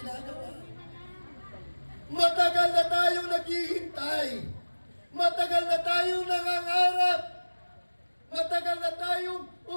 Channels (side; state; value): both; inverted; correlation -1.00